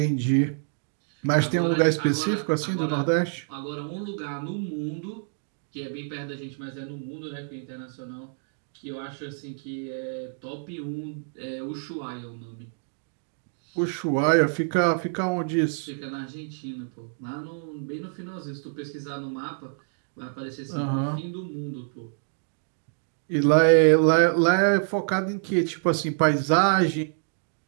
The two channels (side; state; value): left; silent; digital silence